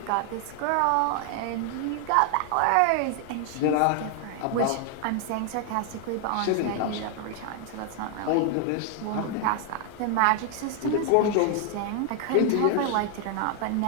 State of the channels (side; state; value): both; different; correlation 0.00